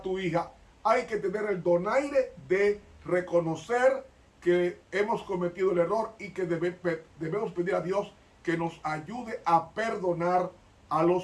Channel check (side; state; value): both; identical; correlation 1.00